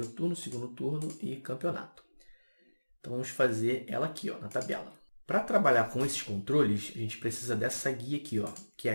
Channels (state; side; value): inverted; both; correlation -1.00